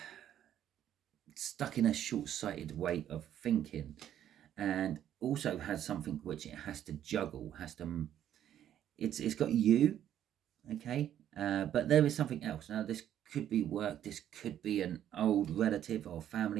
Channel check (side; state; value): left; quieter; 10.8 dB